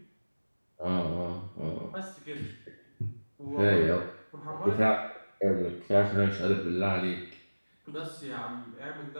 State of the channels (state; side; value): inverted; both; correlation -1.00